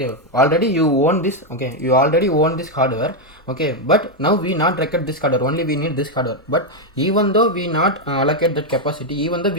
already you own this. Okay, you already own this hardware. Okay, but now we not record this hardware, only we need this hardware. But even though we not allocate that capacity, even though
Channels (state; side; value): normal; both; correlation 0.03